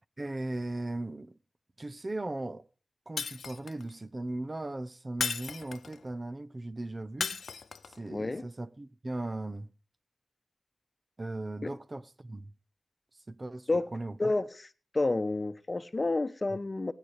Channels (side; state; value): both; normal; correlation 0.96